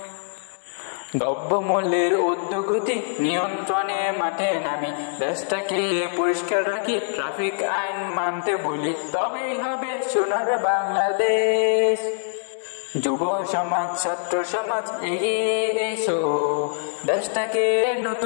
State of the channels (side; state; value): right; silent; digital silence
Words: দ্রব্যমূল্যের ঊর্ধ্বগতি নিয়ন্ত্রণে মাঠে নামি, দেশটাকে পরিষ্কার রাখি, ট্রাফিক আইন মানতে বলি, তবেই হবে সোনার বাংলাদেশ। যুব সমাজ, ছাত্র সমাজ এগিয়ে এসো, দেশটাকে